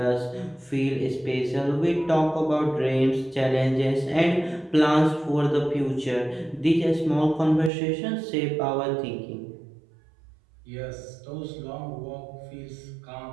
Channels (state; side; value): drops out; left; at 7.7 s